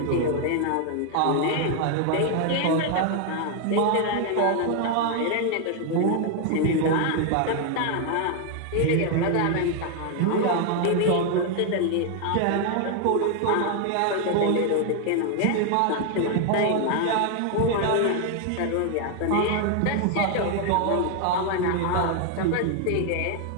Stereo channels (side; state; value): both; different; correlation 0.00